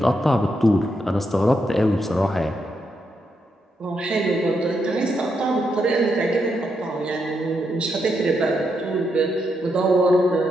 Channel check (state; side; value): normal; both; correlation 0.81